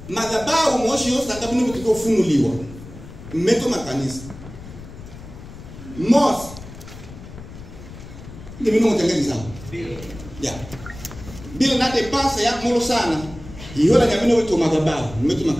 madhabahu moshi yosa kabini mtiko funuliwa. Mmeto makanisa. Mos. Ni mimi mtengeni sawa. Ya. Bila nate pasa ya mulu sana. Ihola nyamino wetu madhabahu, mmeto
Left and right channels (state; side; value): noise; left; rumble, 15 dB below the sound